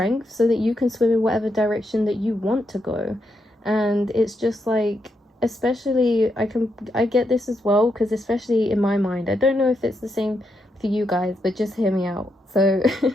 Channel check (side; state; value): both; normal; correlation 0.81